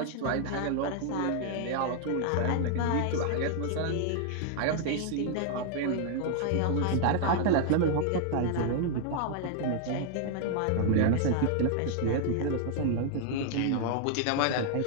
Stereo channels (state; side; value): different; both; correlation 0.00